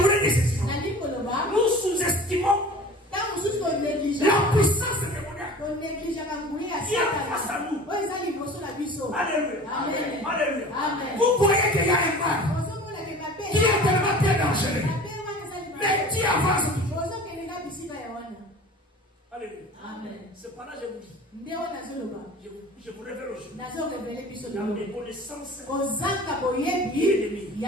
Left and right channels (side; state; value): both; normal; correlation 0.41